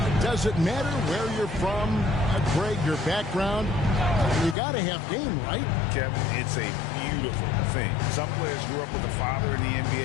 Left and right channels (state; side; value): drops out; right; at 4.5 s